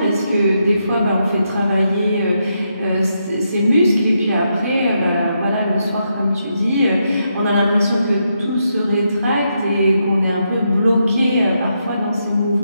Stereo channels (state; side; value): inverted; both; correlation -0.81